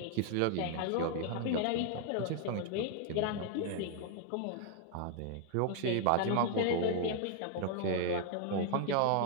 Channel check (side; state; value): both; different; correlation 0.00